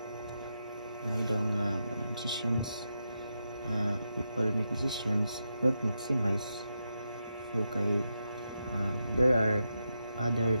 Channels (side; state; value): both; inverted; correlation -0.85